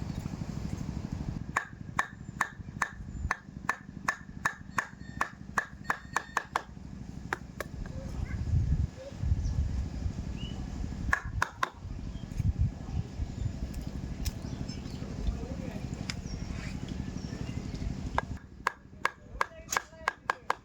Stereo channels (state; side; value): identical; both; correlation 1.00